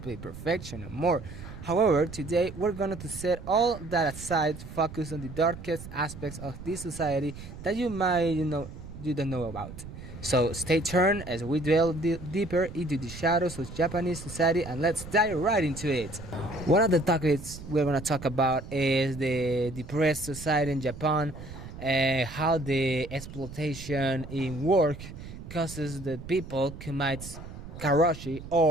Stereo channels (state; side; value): noise; right; rumble, 13 dB below the sound